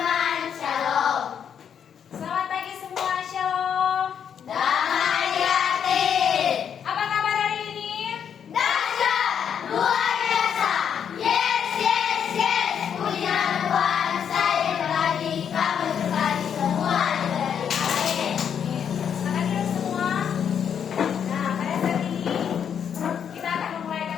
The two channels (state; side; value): quieter; right; 8.1 dB